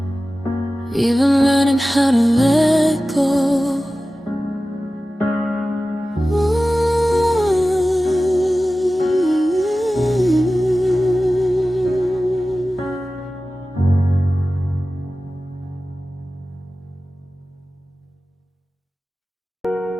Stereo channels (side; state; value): both; normal; correlation 0.95